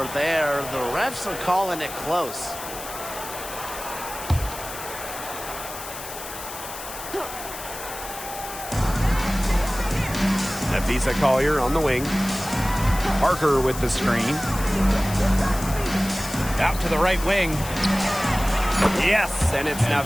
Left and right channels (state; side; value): noise; left; hiss, 11 dB below the sound